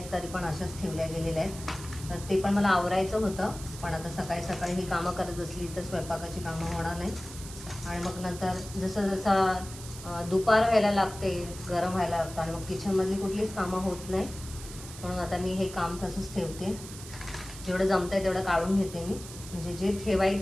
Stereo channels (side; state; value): right; noise; hiss, 14 dB below the sound